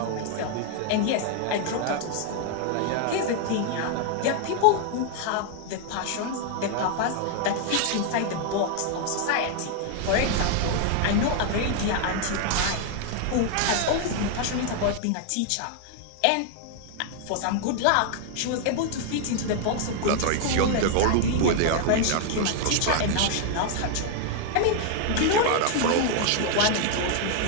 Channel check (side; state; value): both; different; correlation 0.00